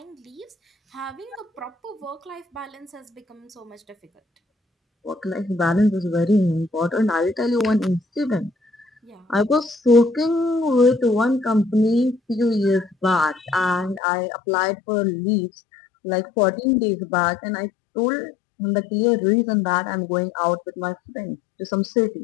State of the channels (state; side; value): drops out; right; at 14.0 s